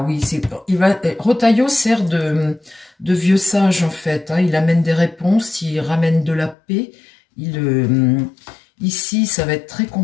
oui, Retailleau sert de vieux sage, en fait, hein. Il amène des réponses, il ramène de la paix. Ici, ça va être très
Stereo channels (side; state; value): right; drops out; at 6.6 s